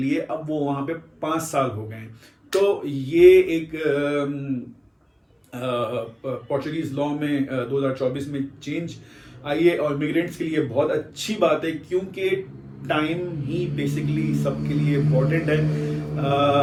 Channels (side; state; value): both; identical; correlation 1.00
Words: अब वो वहाँ पे 5 साल हो गए। तो ये एक पोर्चुगीज लॉ में 2024 में चेंज आई है, और इमिग्रेंट्स के लिए बहुत अच्छी बात है, क्योंकि टाइम ही बेसिकली सबके लिए इम्पोर्टेंट है।